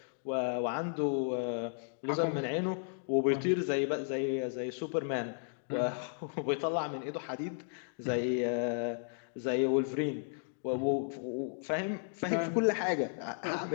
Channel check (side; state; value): right; silent; digital silence